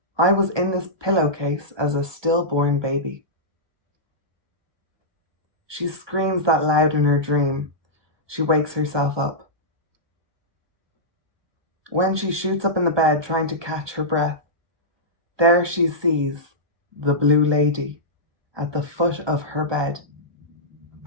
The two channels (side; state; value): left; late; 1.2 ms